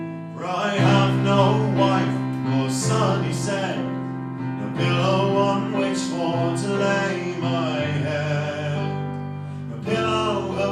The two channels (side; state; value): both; identical; correlation 1.00